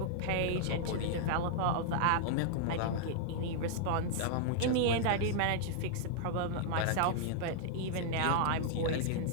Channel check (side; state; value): both; different; correlation -0.01